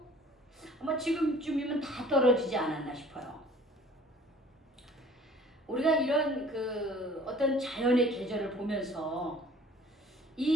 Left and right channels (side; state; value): both; normal; correlation 0.51